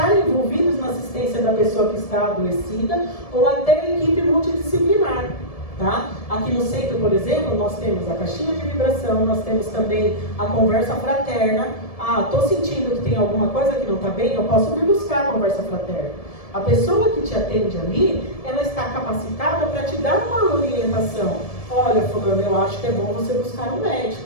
envolvidos na assistência da pessoa que está adoecida ou até equipe multidisciplinar, tá? Aqui no centro, por exemplo, nós temos a caixinha de vibração, nós temos também a conversa fraterna. Estou sentindo que tem alguma coisa que não está bem, eu posso vir buscar a conversa fraterna. A pessoa que te atende ali, ela está capacitada para te dar uma orientação. Olha, fulano, eu acho que é bom você buscar um médico.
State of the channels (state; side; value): late; right; 1.7 ms